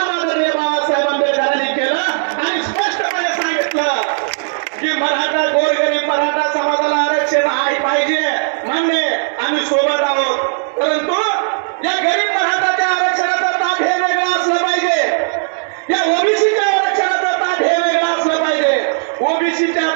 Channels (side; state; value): left; silent; digital silence